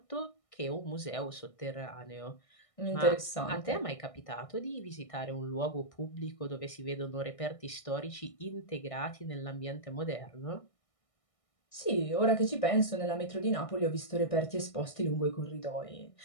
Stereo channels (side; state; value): right; late; 1.6 ms